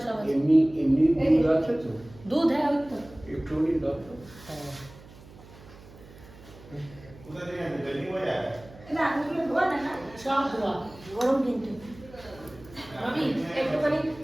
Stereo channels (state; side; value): noise; right; hum, 21 dB below the sound